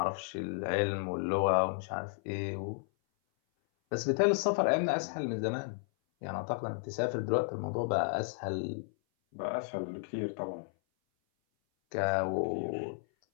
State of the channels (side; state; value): right; silent; 56 dB below the other